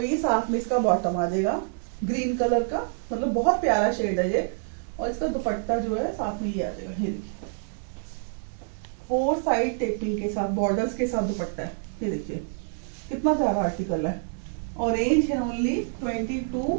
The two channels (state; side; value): silent; left; digital silence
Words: ये साथ में इसका बॉटम आ जाएगा ग्रीन कलर का, मतलब बहुत प्यारा शेड है ये। और इसका दुपट्टा जो है साथ में ये आ जाएगा, ये देखिए 4 साइड टेपिंग के साथ बॉर्डर्स के साथ दुपट्टा है, ये देखिए कितना प्यारा आर्टिकल है। और रेंज है ओनली